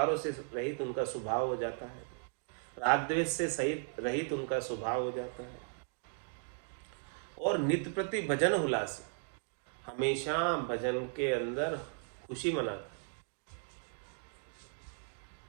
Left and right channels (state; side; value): silent; left; 53 dB below the other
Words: से रहित उनका स्वभाव हो जाता है, राग द्वेष से सहित रहित उनका स्वभाव हो जाता है। और नित्य प्रति भजन हुलासे, हमेशा भजन के अंदर खुशी मनाता है।